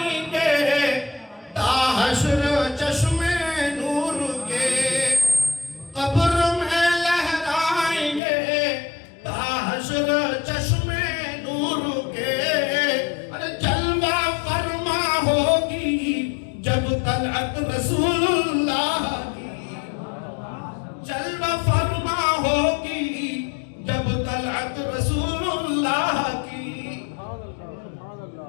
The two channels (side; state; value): right; drops out; at 8.2 s